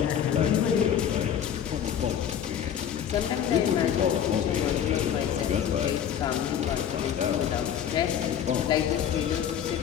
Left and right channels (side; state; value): right; quieter; 9.1 dB